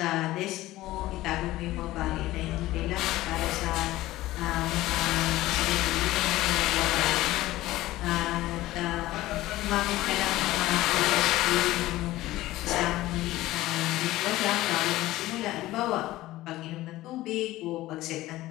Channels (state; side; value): quieter; right; 16.7 dB